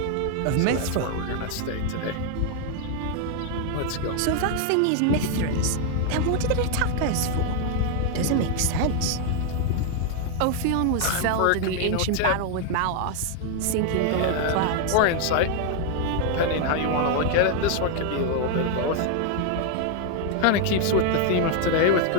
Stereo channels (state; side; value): different; both; correlation 0.00